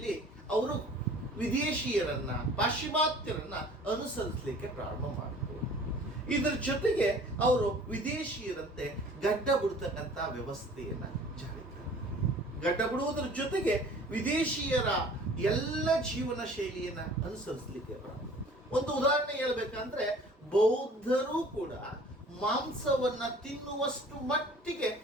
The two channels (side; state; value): both; normal; correlation 0.49